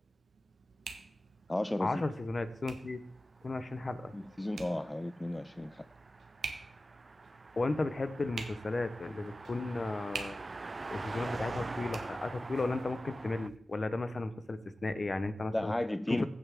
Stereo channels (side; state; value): both; normal; correlation 0.96